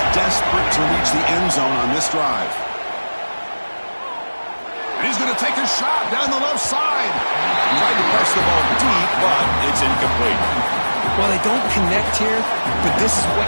desperate to reach the end zone on this drive. And he's going to take a shot down the left side. Tried to press the ball deep, but it's incomplete. Well, they don't connect here, but this is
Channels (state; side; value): inverted; both; correlation -1.00